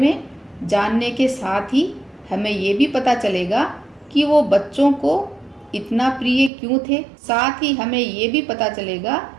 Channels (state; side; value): drops out; left; at 6.5 s